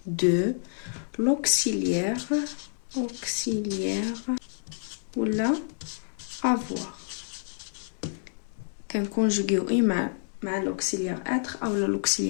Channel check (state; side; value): silent; right; digital silence